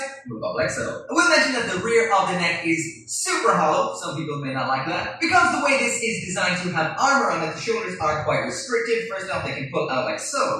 move up like so. I will mention that the rear of the neck is super hollow. Some people may not like that. Because the way this is designed to have armor on it, the shoulders are quite restricted. First off, they can pull out like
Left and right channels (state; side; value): identical; both; correlation 1.00